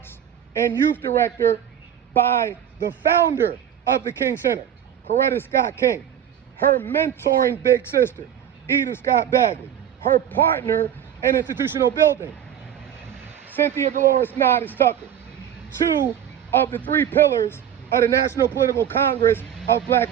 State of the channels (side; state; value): left; quieter; 9.6 dB